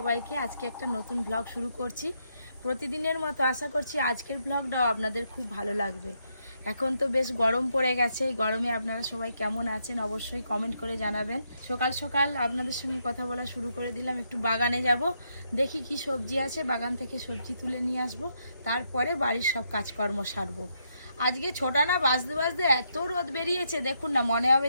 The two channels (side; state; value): both; inverted; correlation -0.78